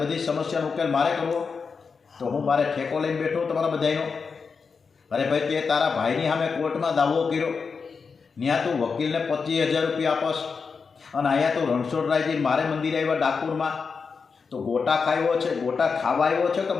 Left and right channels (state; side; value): quieter; right; 5.3 dB